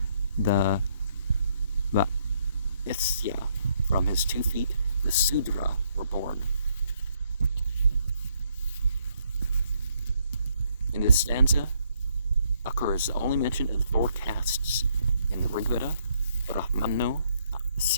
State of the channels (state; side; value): inverted; both; correlation -0.71